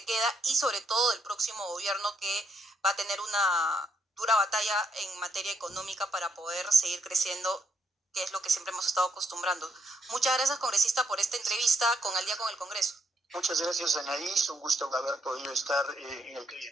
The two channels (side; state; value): both; normal; correlation 0.75